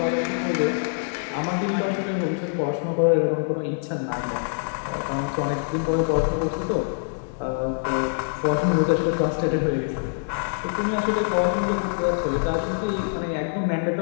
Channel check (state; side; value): silent; right; digital silence